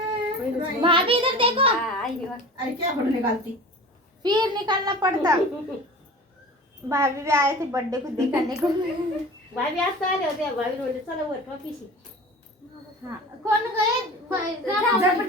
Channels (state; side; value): normal; both; correlation 0.38